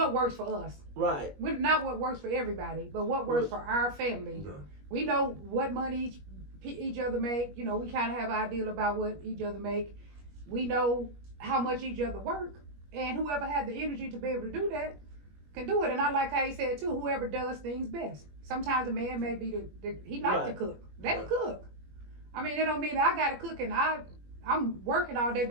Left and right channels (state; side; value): late; left; 21 ms